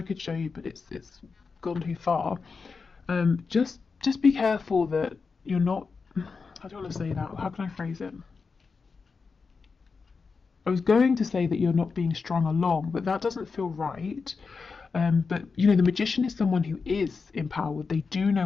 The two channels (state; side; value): quieter; right; 4.8 dB